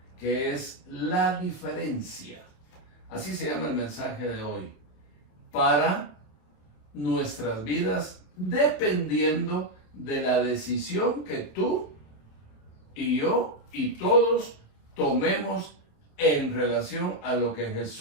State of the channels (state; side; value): late; right; 27 ms